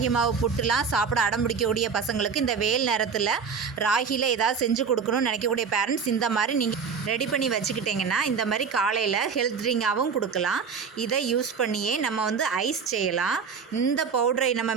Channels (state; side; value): quieter; left; 6.0 dB